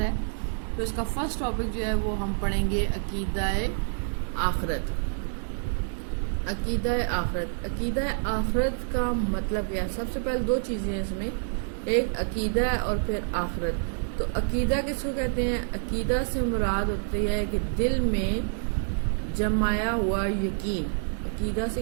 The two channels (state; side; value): silent; left; digital silence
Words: تو اس کا فرسٹ ٹاپک جو ہے وہ ہم پڑھیں گے عقیدہ آخرت۔ عقیدہ آخرت کا مطلب کیا ہے؟ سب سے پہلے دو چیزیں ہیں اس میں، ایک عقیدہ اور پھر آخرت۔ تو عقیدہ کس کو کہتے ہیں؟ عقیدہ سے مراد ہوتی ہے کہ دل میں جمایا ہوا یقین۔ عقیدہ سے